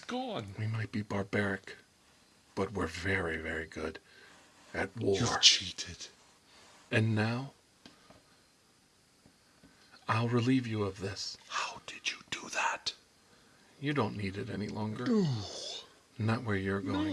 gone? we might be barbaric, but we're very, very good at war. You've cheated. And now, I'll relieve you of this. How did you do that? You don't need it any longer. No. Not where you're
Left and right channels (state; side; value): identical; both; correlation 1.00